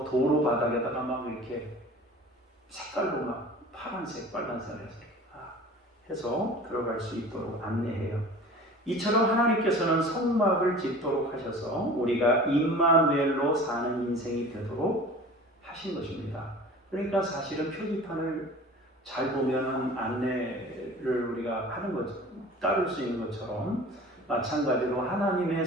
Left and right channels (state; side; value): normal; both; correlation 0.41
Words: 도로 바닥에다가 막 이렇게 색깔로 막 파란색, 빨간색 해서 들어갈 수 있도록 안내해요. 이처럼 하나님께서는 성막을 짓도록 하셔서 우리가 임마누엘로 사는 인생이 되도록 하신 것입니다. 그러니까 사실은 표지판을 잘 보면 안내를 우리가 하는 것, 따를 수 있는 것처럼 마찬가지로 하나님의